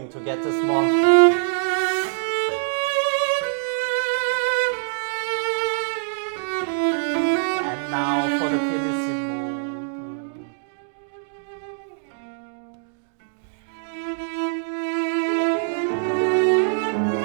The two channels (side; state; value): left; silent; digital silence